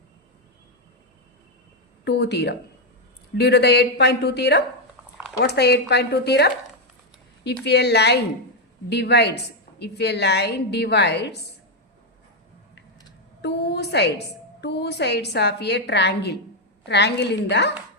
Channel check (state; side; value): normal; both; correlation 0.03